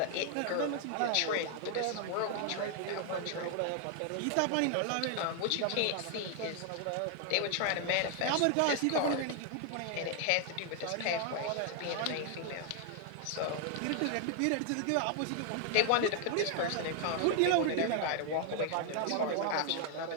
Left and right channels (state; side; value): different; both; correlation 0.00